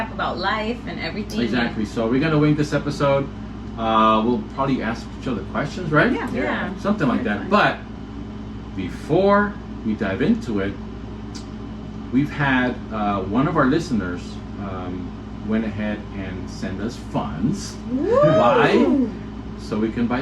about life and everything. Exactly. So we're gonna wing this episode. We'll probably ask each other questions, right? Yeah. Something like that. But before we dive into it, we've had one of our listeners went ahead and send us funds. Why? So we can buy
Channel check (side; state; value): both; identical; correlation 1.00